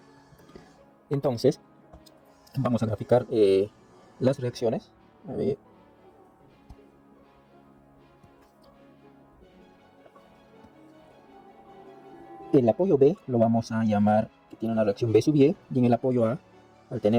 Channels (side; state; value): both; identical; correlation 1.00